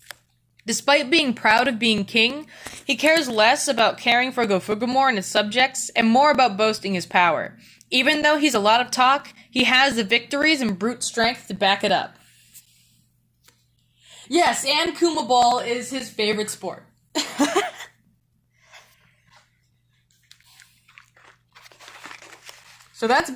Despite being proud of being king, he cares less about caring for Gofugumor and his subjects and more about boasting his power. Even though he's a lot of talk, he has the victories and brute strength to back it up. Yes, and Kuma Ball is his favorite sport. So that's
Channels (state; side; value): identical; both; correlation 1.00